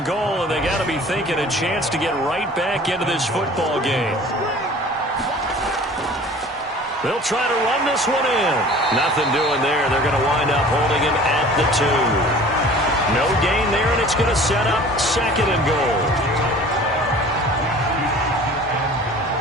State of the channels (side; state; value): both; normal; correlation 0.45